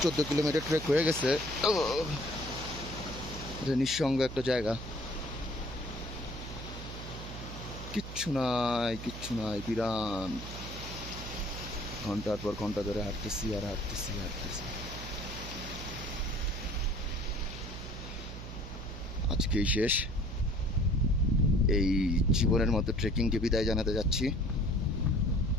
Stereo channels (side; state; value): right; noise; hum, 10 dB below the sound